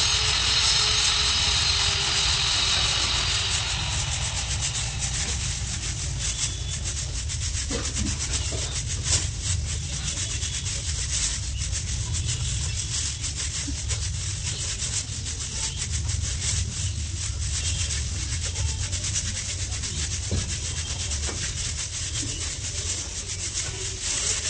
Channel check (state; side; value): identical; both; correlation 1.00